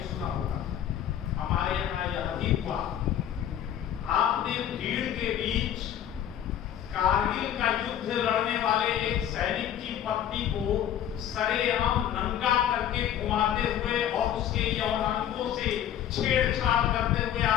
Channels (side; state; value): right; quieter; 10.4 dB